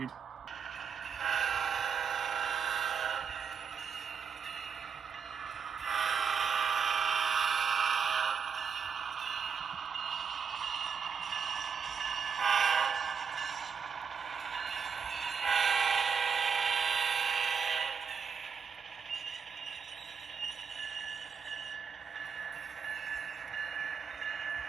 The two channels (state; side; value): quieter; left; 6.4 dB